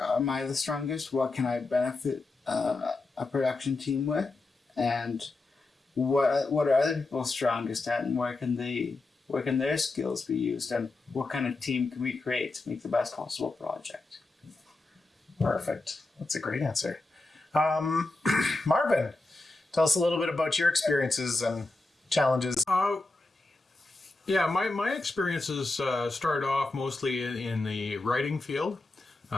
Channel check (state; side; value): quieter; right; 3.2 dB